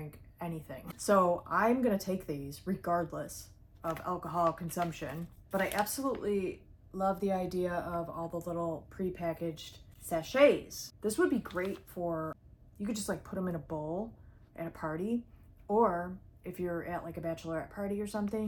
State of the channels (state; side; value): identical; both; correlation 1.00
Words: anything. So I'm gonna take these regardless of alcohol consumption. But I absolutely love the idea of all the little pre-packaged sachets. This would be great for, you could just like put them in a bowl at a party, or if you're at like a bachelorette party or something,